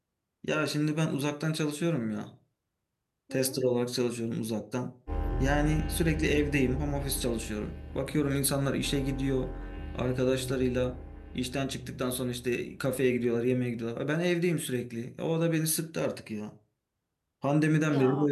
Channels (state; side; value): identical; both; correlation 1.00